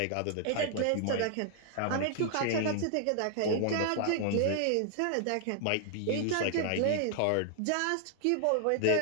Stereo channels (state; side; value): different; both; correlation 0.00